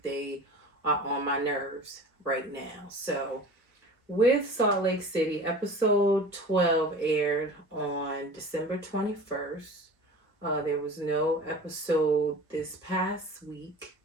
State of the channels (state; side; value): normal; both; correlation 0.38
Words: they are on my nerves right now. So, with Salt Lake City, episode 12 aired on December 21st. There was no episode this past week